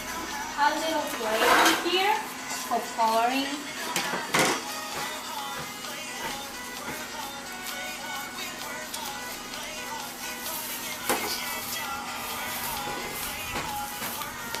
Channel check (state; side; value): identical; both; correlation 1.00